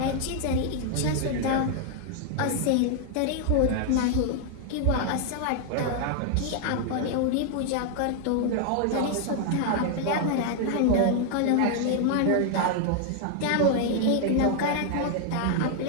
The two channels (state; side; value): different; both; correlation 0.00